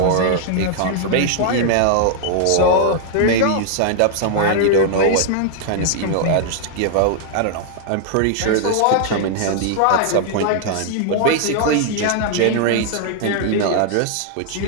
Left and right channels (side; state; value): both; different; correlation 0.00